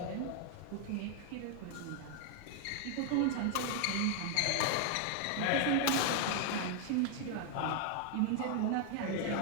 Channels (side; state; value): both; different; correlation 0.00